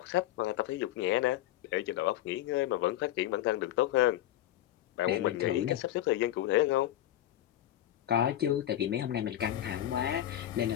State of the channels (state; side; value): quieter; right; 13.0 dB